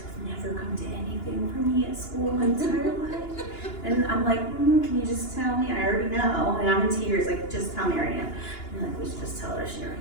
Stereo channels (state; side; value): late; right; 2.9 ms